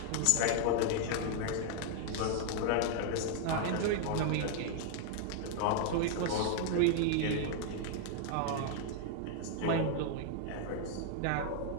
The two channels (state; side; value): different; both; correlation 0.00